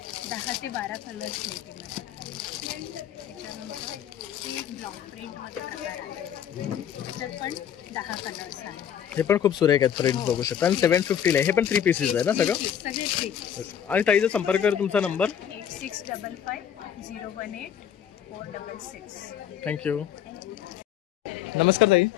10 ते 12 कलर्स मिळतील. त्याच्यानंतर हे एक ब्लॉक प्रिंटमध्ये प्रकार आहे. त्याच्यात पण 10 कलर्स आहेत. हे पण खूप सुरेख आहेत. प्रिंट बघू शकता. आणि 750 आहे. हे पण 3 पीसेस आहे ना सगळं? सगळे 3. आणि ताईचा संपर्क कर. तुमचा नंबर? 8655016466. थँक्यू. नमस्कार ताई.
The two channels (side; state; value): right; quieter; 9.3 dB